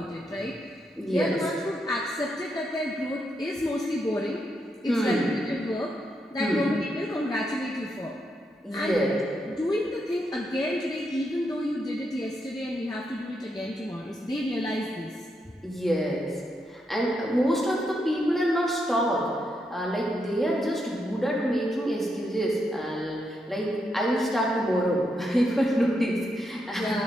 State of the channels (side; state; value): both; normal; correlation 0.81